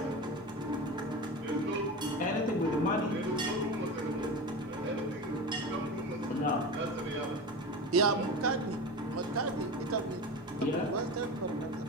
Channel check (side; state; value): both; normal; correlation 0.27